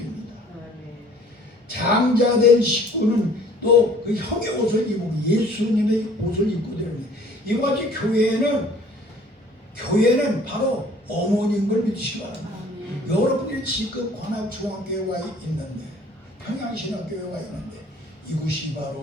장자된 식구는 또 그 형의 옷을 입고 예수님의 옷을 입고 되는 이와 같이 교회는 바로 어머니인 걸 믿으시기 바랍니다. 여러분들이 지금 관악중앙교회가 있는데 평양신학교회가 있는데 이곳이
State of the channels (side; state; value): both; normal; correlation 0.53